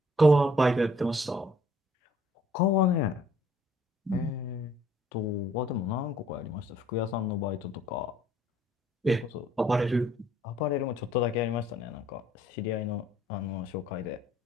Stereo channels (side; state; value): both; normal; correlation 0.60